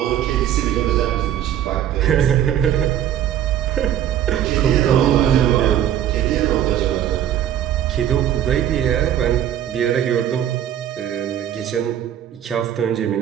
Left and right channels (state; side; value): quieter; left; 10.8 dB